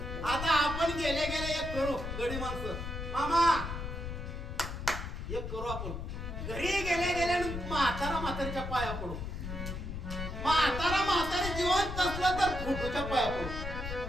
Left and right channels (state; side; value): noise; left; rumble, 6 dB below the sound